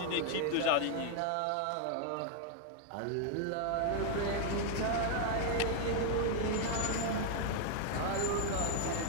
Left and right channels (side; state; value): both; different; correlation 0.00